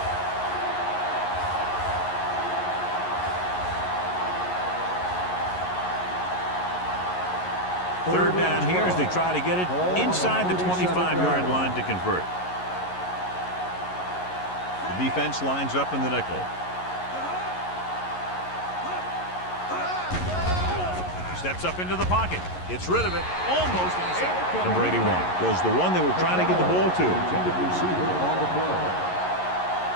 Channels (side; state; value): right; late; 11 ms